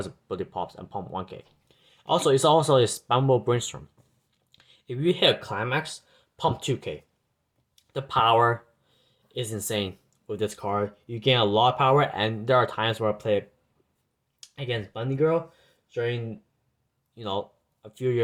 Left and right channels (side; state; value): both; identical; correlation 1.00